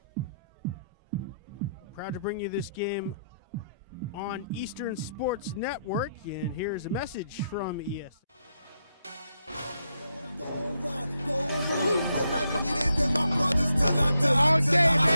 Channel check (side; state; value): both; inverted; correlation -0.80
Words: Proud to bring you this game on Eastern Sports Network, and here's a message from ES. All day,